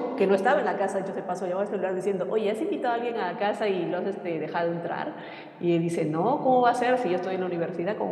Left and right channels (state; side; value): identical; both; correlation 1.00